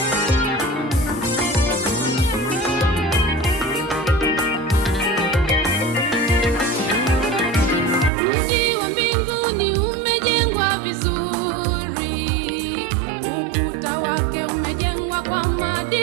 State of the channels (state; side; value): drops out; left; at 8.1 s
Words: Mji wa mbinguni umejengwa vizuri, ukuta wake umejengwa kwa